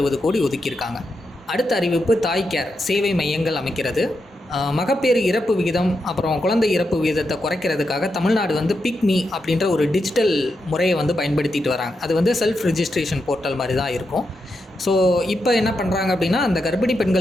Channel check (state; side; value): normal; both; correlation 0.85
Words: கோடி ஒதுக்கியிருக்காங்க. அடுத்த அறிவிப்பு தாய் கேர் சேவை மையங்கள் அமைக்கிறது. மகப்பேறு இறப்பு விகிதம் அப்புறம் குழந்தை இறப்பு விகிதத்தை குறைக்கிறதுக்காக தமிழ்நாடு பிக்மி அப்படின்ற ஒரு டிஜிட்டல் முறையை பயன்படுத்திட்டு வராங்க. அது செல்ஃப் ரிஜிஸ்ட்ரேஷன் போர்ட்டல் மாதிரி தான் இருக்கும். ஸோ இப்போ என்ன பண்ணுறாங்க அப்படின்னா, அந்த கர்ப்பிணி